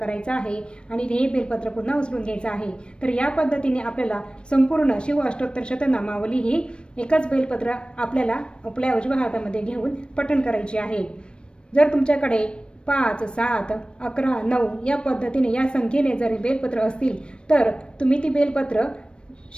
आहे आणि हे बेलपत्र पुन्हा उचलून घ्यायचं आहे। तर या पद्धतीने आपल्याला संपूर्ण शिव अष्टोत्तर शतनामावली ही एकच बेलपत्र आपल्याला आपल्या उजव्या हातामध्ये घेऊन पठण करायची आहे। जर तुमच्याकडे 5, 7, 11, 9 या पद्धतीने या संख्येने जर बेलपत्र असतील तर तुम्ही ती बेलपत्र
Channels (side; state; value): right; late; 0.056 ms